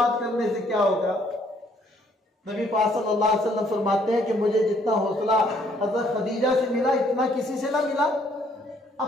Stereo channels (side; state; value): both; normal; correlation 0.65